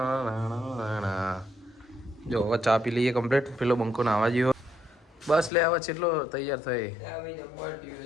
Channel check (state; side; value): drops out; right; at 5.5 s